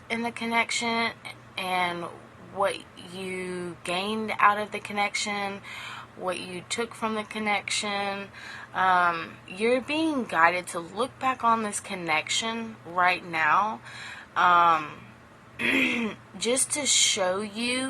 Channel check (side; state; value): both; identical; correlation 1.00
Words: in the connection and what you gained out of the connection, what you took from the connection. You're being guided to look back on this connection right now, just to show